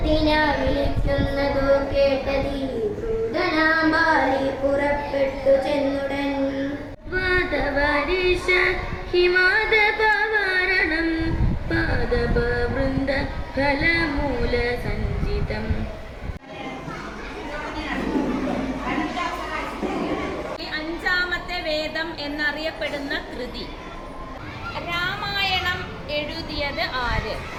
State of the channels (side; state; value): both; identical; correlation 1.00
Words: വിളിക്കുന്നതു കേട്ടതി ക്രൂരനാം ബാലി പുറപ്പെട്ടു ചെന്നുടൻ. വാദവരീശ ഹിമാദപവാരണം പാദപവൃന്ദ ഫലമൂല സഞ്ചിതം. അഞ്ചാമത്തെ വേദം എന്നറിയപ്പെടുന്ന കൃതി രാമായണം എഴുതിയത്